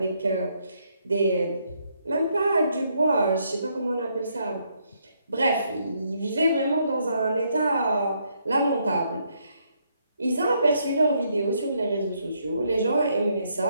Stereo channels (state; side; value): inverted; both; correlation -0.74